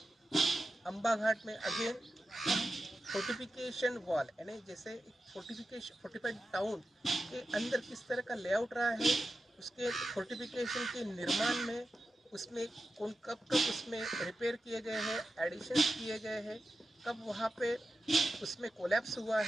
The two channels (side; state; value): both; normal; correlation 0.91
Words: अम्बा घाट में अगेन फोर्टिफिकेशन वॉल यानी जैसे फोर्टिफाइड टाउन के अंदर किस तरह का लेआउट रहा है, उसके फोर्टिफिकेशन के निर्माण में उसमें कब उसमें रिपेयर किए गए हैं, एडिशंस किए गए हैं, कब वहाँ पे उसमें कोलैप्स हुआ